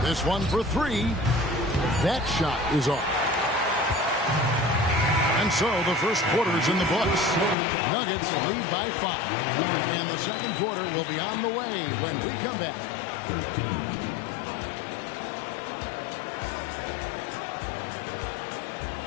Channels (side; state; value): right; drops out; at 7.6 s